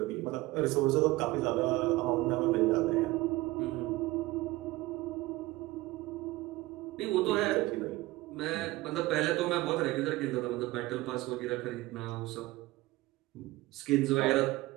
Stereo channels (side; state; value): left; quieter; 19.3 dB